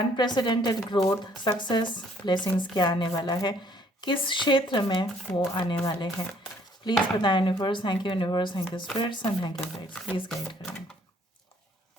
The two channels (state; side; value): normal; both; correlation 0.63